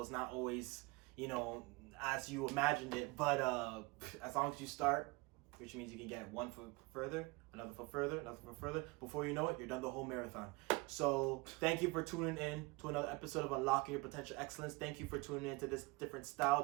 It's not always, as you imagined it. But as long as you start, which means you can get one foot further, another foot further, another foot further. Before you know it, you're done the whole marathon. So thank you for tuning in to another episode of Unlocking Your Potential Excellence. Thank you for tuning in to this different style,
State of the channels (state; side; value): quieter; left; 25.1 dB